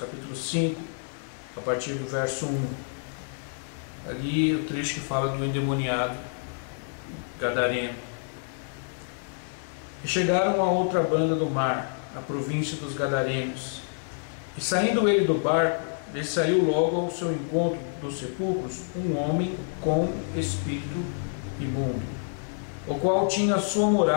5, a partir do verso 1. Ali o trecho que fala do endemoniado gadareno. E chegaram a outra banda do mar, na província dos Gadarenos. E saindo ele do barco, lhe saiu logo ao seu encontro dos sepulcros um homem com espírito imundo, o qual tinha sua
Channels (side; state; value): right; silent; digital silence